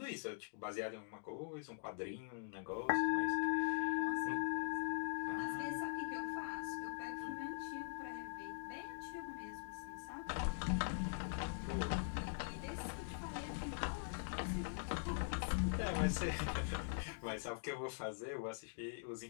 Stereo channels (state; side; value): silent; right; digital silence